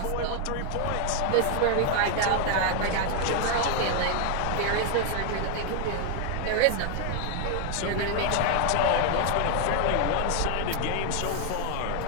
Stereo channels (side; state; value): both; different; correlation 0.00